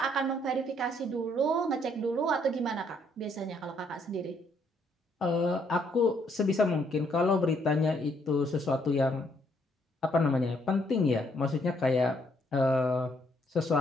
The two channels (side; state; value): both; normal; correlation 0.70